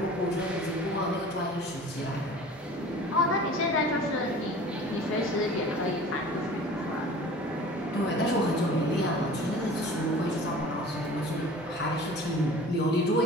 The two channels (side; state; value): both; normal; correlation 0.43